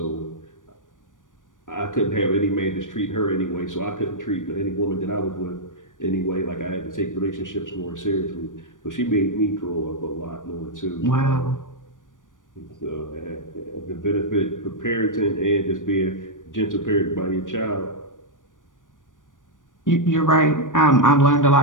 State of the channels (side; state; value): right; late; 0.88 ms